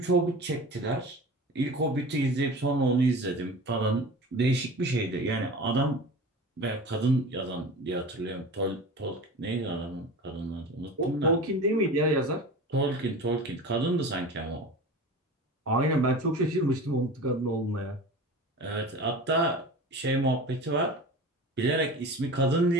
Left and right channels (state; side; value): normal; both; correlation 0.35